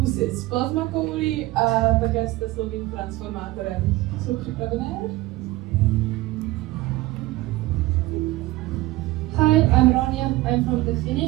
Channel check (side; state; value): left; quieter; 18.4 dB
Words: s plazmakoulí a také s teslovým transformátorem. Jsou připravené? Hi, I'm Ronja. I'm from the